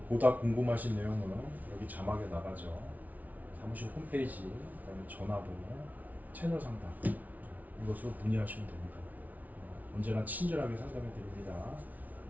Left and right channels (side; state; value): left; late; 0.075 ms